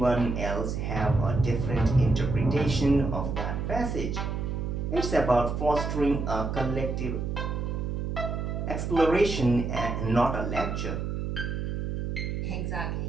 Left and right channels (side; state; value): right; noise; hum, 3 dB below the sound